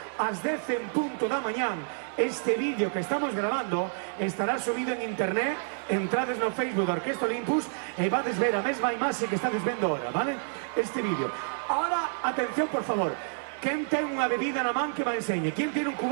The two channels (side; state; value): left; silent; 57 dB below the other